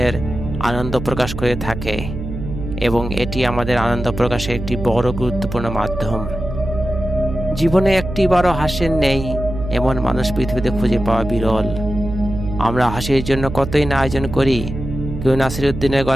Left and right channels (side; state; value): right; noise; hum, 8 dB below the sound